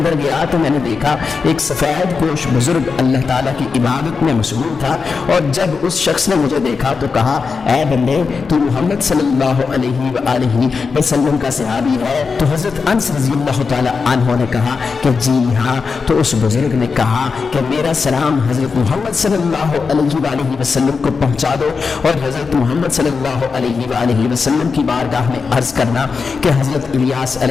گیا تو میں نے دیکھا ایک سفید پوش بزرگ اللہ تعالیٰ کی عبادت میں مشغول تھا، اور جب اس شخص نے مجھے دیکھا تو کہا اے بندے تو محمد صلی اللہ علیہ وآلہ وسلم کا صحابی ہے؟ تو حضرت انس رضی اللہ تعالیٰ عنہ نے کہا کہ جی ہاں۔ تو اس بزرگ نے کہا کہ میرا سلام حضرت محمد صلی اللہ علیہ وآلہ وسلم کو پہنچا دو، اور حضرت محمد صلی اللہ علیہ وآلہ وسلم کی بارگاہ میں عرض کرنا کہ حضرت الیاس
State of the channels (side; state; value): right; quieter; 5.0 dB